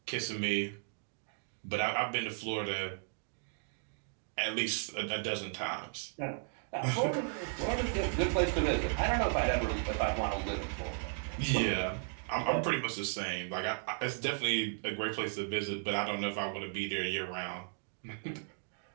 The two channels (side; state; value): left; silent; 54 dB below the other